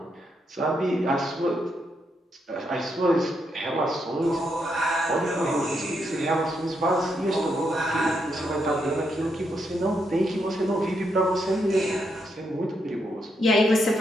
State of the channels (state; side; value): normal; both; correlation 0.79